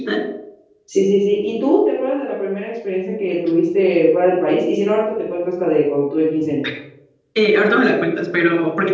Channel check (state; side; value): identical; both; correlation 1.00